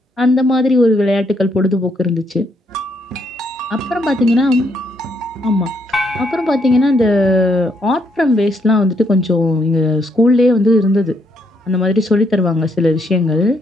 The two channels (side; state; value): both; normal; correlation 0.74